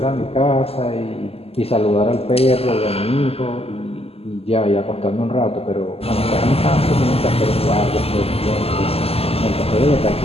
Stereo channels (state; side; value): late; right; 0.29 ms